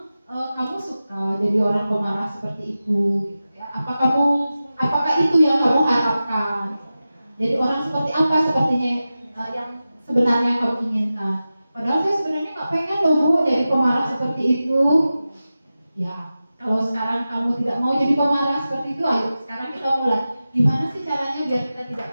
kamu suka jadi orang pemarah seperti itu, gitu ya? Apakah itu yang kamu harapkan? Jadi orang seperti apa sepertinya yang sebenarnya kamu inginkan? Padahal saya sebenarnya nggak pengen loh Bu jadi pemarah seperti itu. Ya, kalau sekarang kamu tidak mau jadi pemarah seperti itu, ayo sekarang kita mulai. Gimana sih caranya biar kita tidak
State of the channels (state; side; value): inverted; both; correlation -0.94